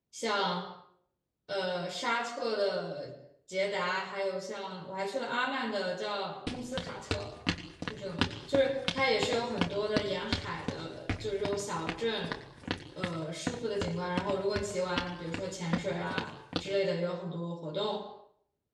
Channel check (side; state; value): both; identical; correlation 1.00